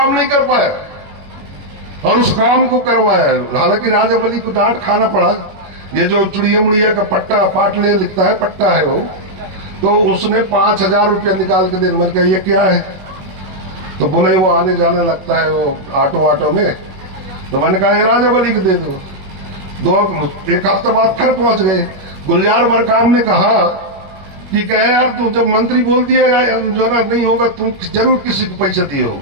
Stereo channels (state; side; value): late; left; 21 ms